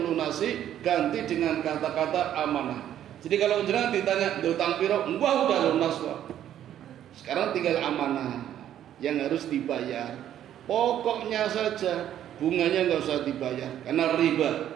ganti dengan kata-kata amanah. Jadi kalau jenengan ditanya utang piro, wah udah lunas Pak. Sekarang tinggal amanah yang harus dibayar. Pokoknya saja, bunganya nggak usah dibayar karena riba.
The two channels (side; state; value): left; quieter; 11.0 dB